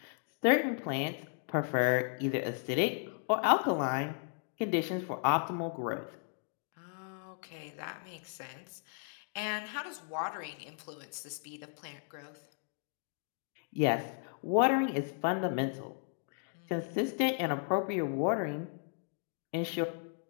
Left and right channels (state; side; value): silent; right; 54 dB below the other